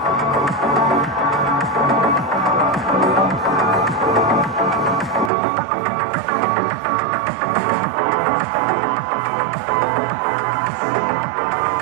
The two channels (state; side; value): drops out; left; at 5.3 s